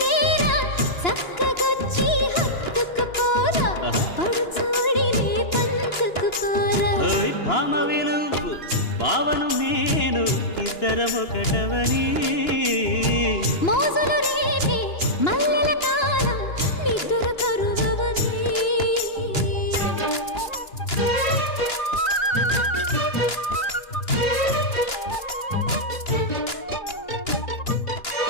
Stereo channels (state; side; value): late; right; 2.9 ms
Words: డేరా, చక్కగొచ్చి హత్తుకుపోరా, పడుచూడినే పంచుకుపోరా. భామ విలువు భావను నేను, ఇద్దరమొకటవని. మోజులు రేపే మల్లెల కాలం, నిద్ర కరువవని.